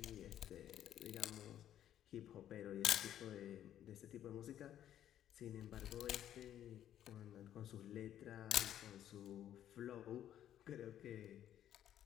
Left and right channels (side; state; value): right; quieter; 11.1 dB